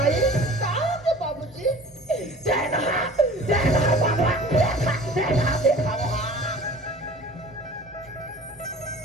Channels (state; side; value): normal; both; correlation 0.44